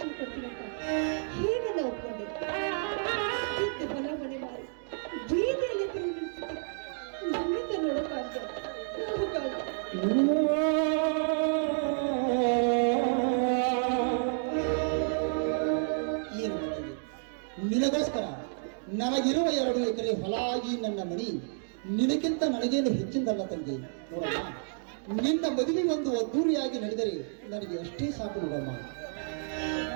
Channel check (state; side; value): silent; left; digital silence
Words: ಕೊಡ್ತೀನಿ ಅಂತ ಹೇಗೆಲ್ಲ ಒಪ್ಕೊಂಡೆ? ಇದ್ದ ಹೊಲ ಮನೆ ಮಾರಿ ಬೀದಿಯಲ್ಲಿ ತಿರುಗಿಸುತ್ತೆ ನಮ್ಮಿಂದ ನೋಡೋಕ್ಕಾಗ್ತದೆ. ಏನು ಮಗನೇ, ನಿನಗೋಸ್ಕರ ನನಗಿರುವ 2 ಎಕರೆ ಹೊಲ ಈ ನನ್ನ ಮಣಿ ನಿನಗಿಂತ ನನಗೇನು ಹೆಚ್ಚಿಂದಲ್ಲ ತಂಗಿ. ನೋಡಮ್ಮ, ನಿನ್ನ ಮದುವೆ ಒಂದು ಅದ್ದೂರಿಯಾಗಿ ನಡೆದರೆ ನನಗೆ ಅಷ್ಟೇ ಸಾಕು ನೋಡಮ್ಮ.